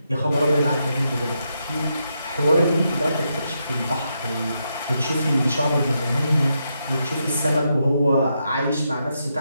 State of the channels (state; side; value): inverted; both; correlation -0.82